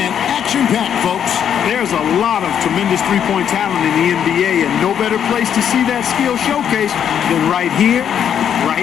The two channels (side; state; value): right; quieter; 8.8 dB